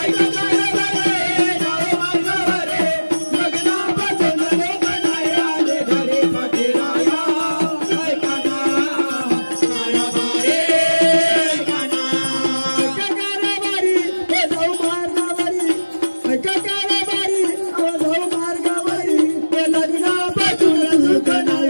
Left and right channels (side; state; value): both; inverted; correlation -1.00